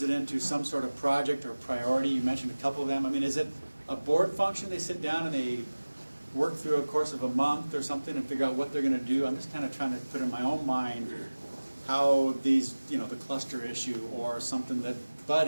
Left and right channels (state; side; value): inverted; both; correlation -1.00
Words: it into some sort of project or priority? You mentioned a couple of them. I mean, is it a board function? They sit down and they work through a course of a month or something and figure out what they're going to do? I'm just kind of trying to put in my own mind how these, the cluster issue or something that Bud